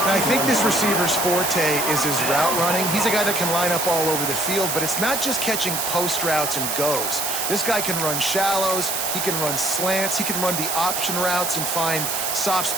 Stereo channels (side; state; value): right; noise; hiss, 1 dB below the sound